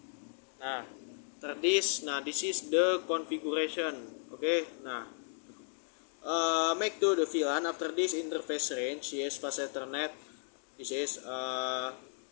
after this. This is the configuration. Okay. Make to the VLAN. After this interface range. Yes, fast Ethernet. This is 2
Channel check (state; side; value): silent; right; digital silence